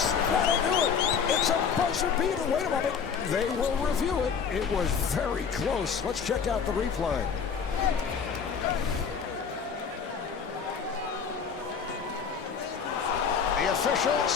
That'll do it. It's a buzzer beater. Wait a moment. They will review it. It was very close. Let's check out the replay. The official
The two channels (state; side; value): quieter; right; 6.5 dB